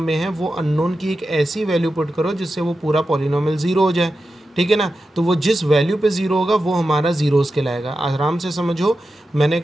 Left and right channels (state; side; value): normal; both; correlation 0.91